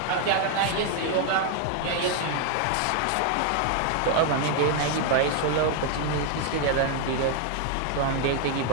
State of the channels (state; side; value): different; both; correlation 0.00